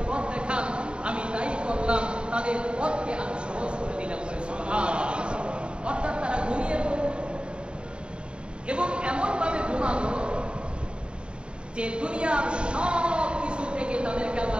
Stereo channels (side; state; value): left; late; 0.053 ms